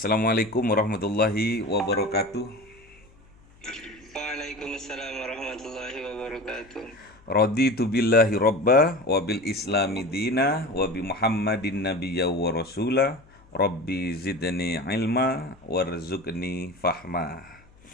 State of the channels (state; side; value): noise; left; hum, 27 dB below the sound